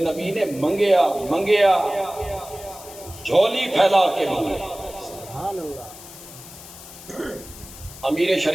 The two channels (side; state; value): left; noise; hiss, 16 dB below the sound